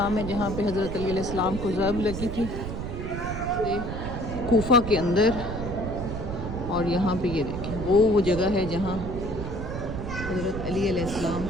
है जहाँ पे हज़रत अली अलैहिस्सलाम को ज़र्ब लगी थी, ये कूफा के अंदर। और यहाँ पे ये देखें वो जगह है जहाँ हज़रत अली अलैहिस्सलाम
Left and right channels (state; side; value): noise; right; rumble, 6 dB below the sound